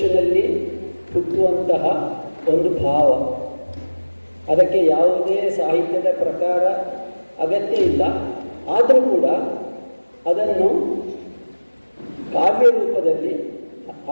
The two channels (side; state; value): both; inverted; correlation -1.00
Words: ಹುಟ್ಟುವಂತಹ ಒಂದು ಭಾವ. ಅದಕ್ಕೆ ಯಾವುದೇ ಸಾಹಿತ್ಯದ ಪ್ರಕಾರ ಅಗತ್ಯ ಇಲ್ಲ. ಆದರೂ ಕೂಡ ಅದನ್ನು ಕಾವ್ಯ ರೂಪದಲ್ಲಿ